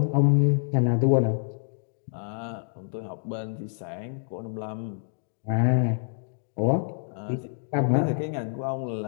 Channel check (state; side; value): silent; right; digital silence